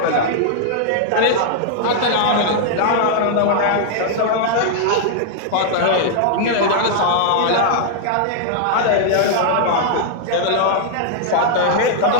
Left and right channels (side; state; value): both; different; correlation -0.01